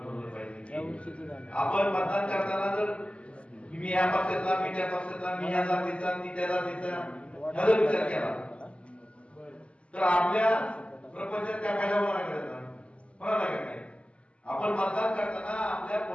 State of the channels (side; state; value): right; late; 0.057 ms